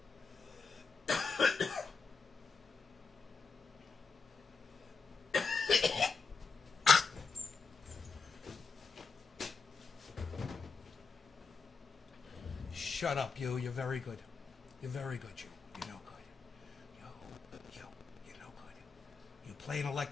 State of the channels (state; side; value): quieter; right; 4.8 dB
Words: Shut up, you. You're very good. You're very good, you. You're no good. You're no good. You play an